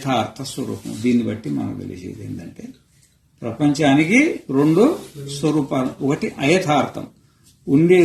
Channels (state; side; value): identical; both; correlation 1.00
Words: స్వరూపము. దీన్ని బట్టి మనకు తెలిసేది ఏంటంటే ప్రపంచానికి 2 స్వరూపాలు. ఒకటి అయథార్థం,